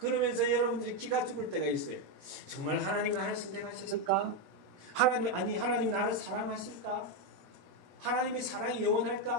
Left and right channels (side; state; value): left; late; 21 ms